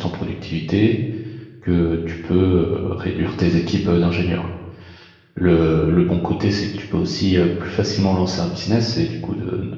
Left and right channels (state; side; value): identical; both; correlation 1.00